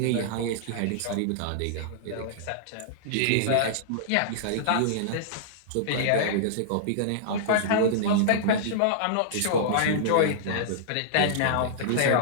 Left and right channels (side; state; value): both; different; correlation -0.02